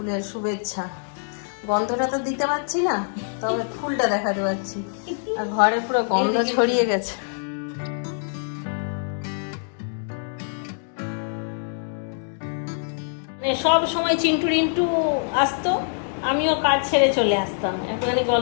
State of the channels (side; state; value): right; silent; digital silence